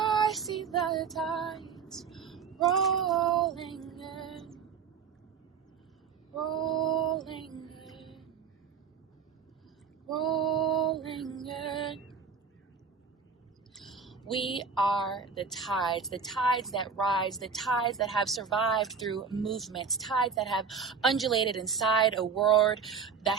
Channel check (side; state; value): left; quieter; 5.9 dB